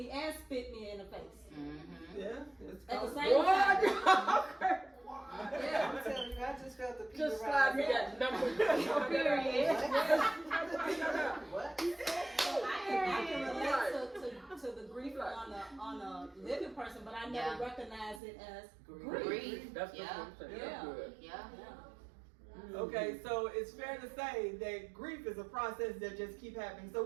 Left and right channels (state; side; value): drops out; left; at 18.2 s